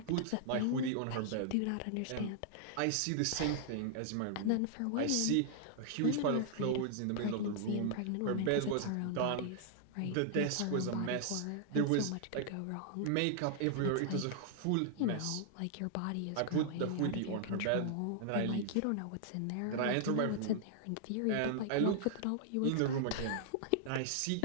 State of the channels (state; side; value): different; both; correlation -0.01